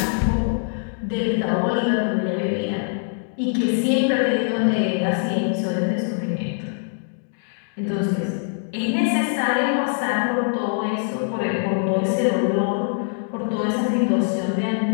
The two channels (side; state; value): right; silent; digital silence